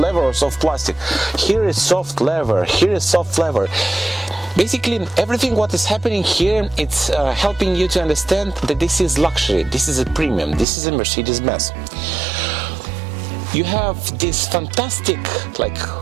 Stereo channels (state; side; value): drops out; left; at 10.7 s